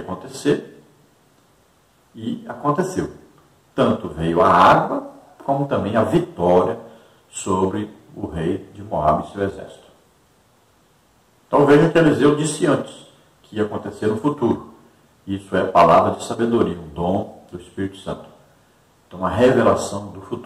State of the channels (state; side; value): identical; both; correlation 1.00